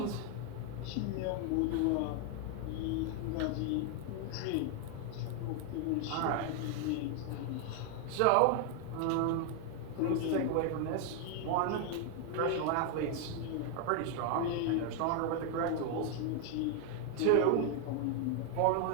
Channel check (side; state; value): both; different; correlation 0.00